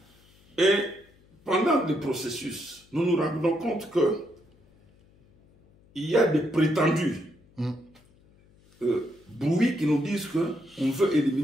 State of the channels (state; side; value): noise; left; hum, 30 dB below the sound